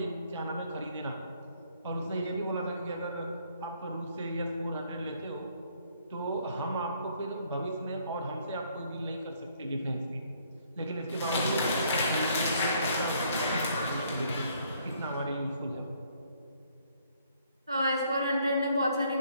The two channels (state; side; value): inverted; both; correlation -0.66